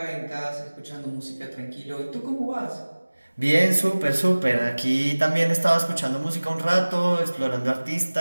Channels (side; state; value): both; inverted; correlation -1.00